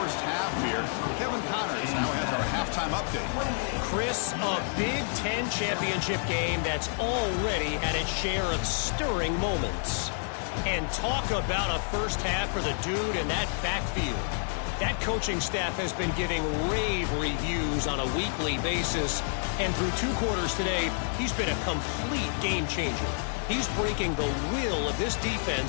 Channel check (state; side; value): silent; right; 59 dB below the other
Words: half here. Kevin Connors now has our halftime update. Chris, a Big Ten championship game that's already had its share of stirring moments. And talk about a first half for the dude in that backfield. That coaching staff has been giving rave reviews on a weekly basis. And through 2 quarters today, he's been a complete game changer. He's breaking the will of this